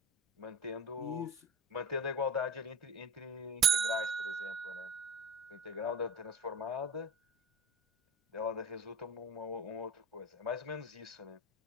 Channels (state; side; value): normal; both; correlation 0.35